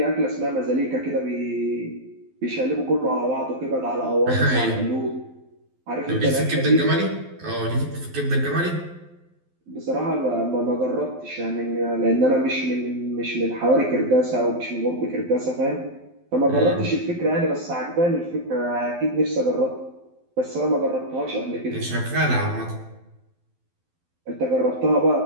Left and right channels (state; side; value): late; left; 12 ms